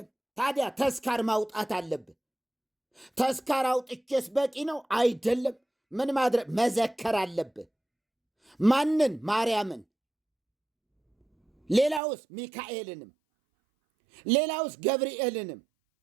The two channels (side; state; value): left; drops out; at 12.0 s